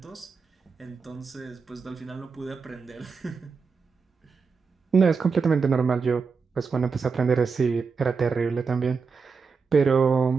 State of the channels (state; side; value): quieter; left; 5.2 dB